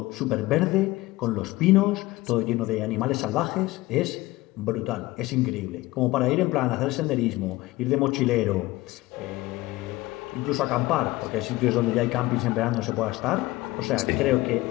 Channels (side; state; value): right; quieter; 19.2 dB